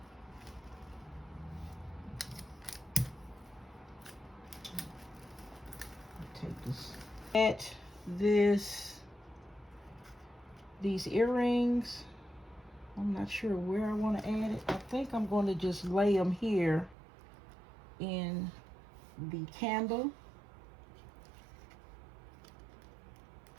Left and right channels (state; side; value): drops out; left; at 16.9 s